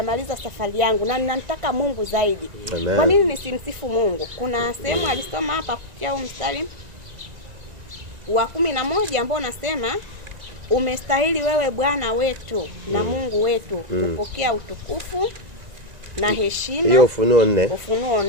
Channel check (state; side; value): late; left; 1.9 ms